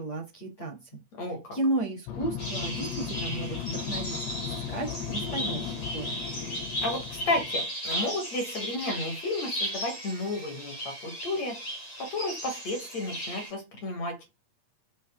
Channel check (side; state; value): right; late; 8.6 ms